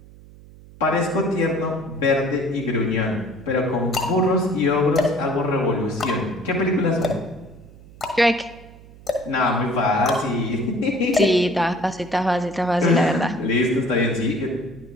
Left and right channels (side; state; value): right; noise; hum, 21 dB below the sound